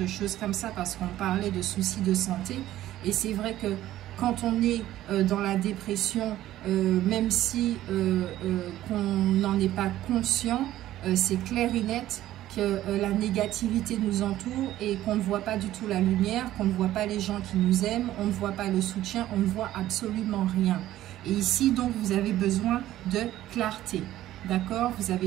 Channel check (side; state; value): left; quieter; 13.9 dB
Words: choses comme ça, parce qu'on parlait de soucis de santé. Et c'est vrai que quand on est dans la dépression, même si qu'on n'en est pas conscient, c'est clair et net que la négativité nous entoure et qu'on ne voit pas du tout la lumière, qu'on ne voit pas les gens qui nous aiment, on ne voit pas le soutien, on ne voit absolument rien. Et ici, donc, vous avez besoin de clarté, d'accord? Vous